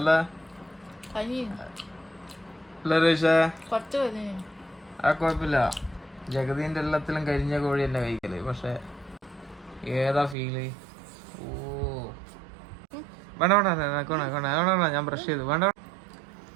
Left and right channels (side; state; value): left; drops out; at 10.4 s